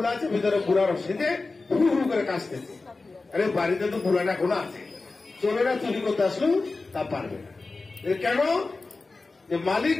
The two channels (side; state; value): right; quieter; 3.7 dB